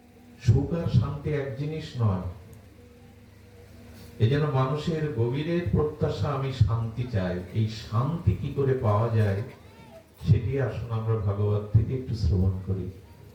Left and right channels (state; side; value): identical; both; correlation 1.00